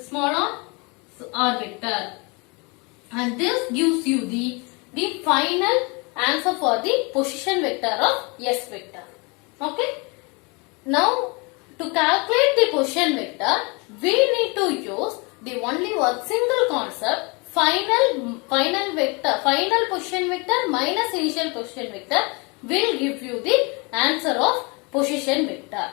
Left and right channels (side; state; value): right; quieter; 29.5 dB